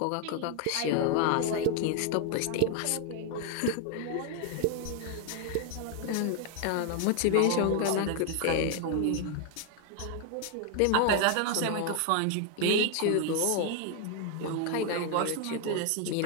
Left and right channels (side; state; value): both; different; correlation 0.00